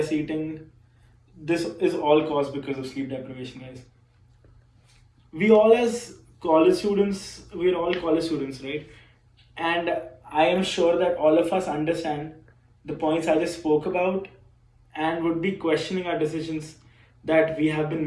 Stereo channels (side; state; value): both; identical; correlation 1.00